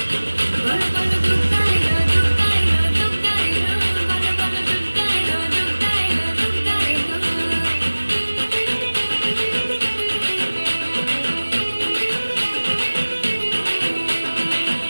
বলো বলো দুগ্গা এলো, দুগ্গা এলো, দুগ্গা এলো, বলো বলো দুগ্গা এলো, দুগ্গা এলো, দুগ্গা এলো।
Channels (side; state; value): both; inverted; correlation -1.00